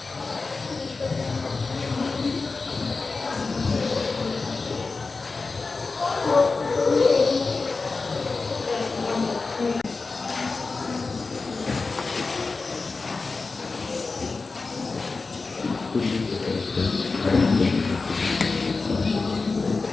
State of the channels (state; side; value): quieter; right; 4.0 dB